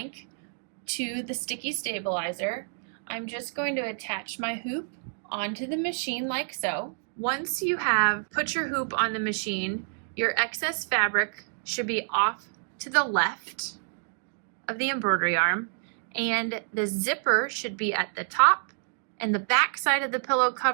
to the sticky stabilizer, I'm just going to attach my hoop onto the machine like so. Once you have put your hoop on the machine, your excess fabric should be off to the left of the embroidery arm, and the zipper should be at the top, and the back side of the pillow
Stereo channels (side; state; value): left; silent; digital silence